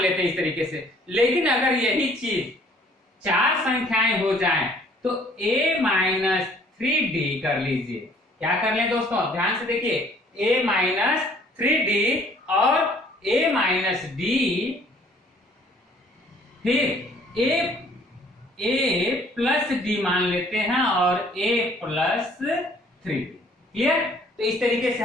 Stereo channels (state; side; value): normal; both; correlation 0.58